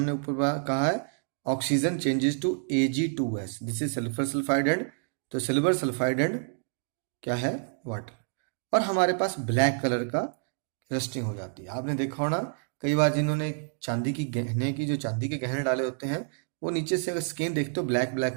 ऊपर कहा है, oxygen changes to Ag2S. This is sulphur sulphide and, तो सिल्वर सल्फाइड एंड क्या है? वाटर. और हमारे पास ब्लैक कलर का रस्टिंग हो जाती है. आपने देखा होना कई बार जिन्होंने चांदी के गहने डाले होते हैं, वो नीचे से अगर स्किन देखते हो ब्लैक ब्लैक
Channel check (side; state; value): left; silent; 59 dB below the other